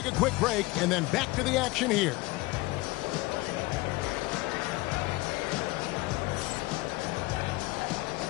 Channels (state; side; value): quieter; right; 21.6 dB